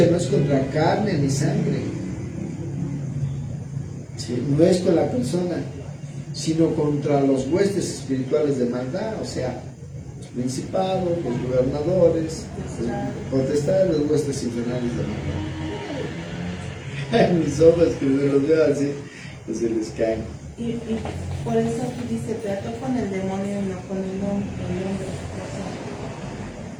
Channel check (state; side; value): identical; both; correlation 1.00